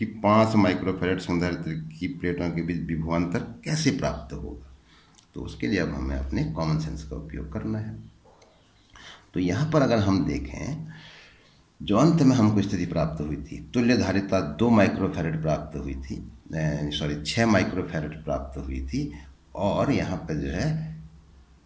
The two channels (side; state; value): both; identical; correlation 1.00